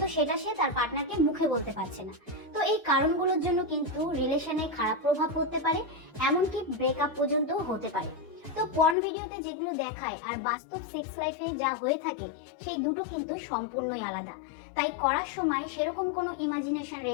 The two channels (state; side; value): drops out; right; at 9.0 s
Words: সেটা সে তার পার্টনারকে মুখে বলতে পারছে না। তো এই কারণগুলোর জন্য কিন্তু রিলেশনে খারাপ প্রভাব পড়তে পারে, এমনকি ব্রেকআপ পর্যন্ত হতে পারে। তো পর্ন ভিডিওতে যেগুলো দেখায় আর বাস্তব সেক্স লাইফে যা হয়ে থাকে সেই দুটো কিন্তু সম্পূর্ণই আলাদা। তাই করার সময় সেরকম কোনো ইমাজিনেশন